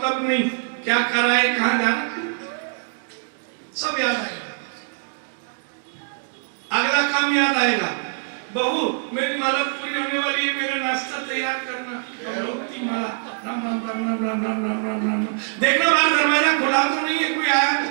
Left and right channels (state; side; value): silent; left; digital silence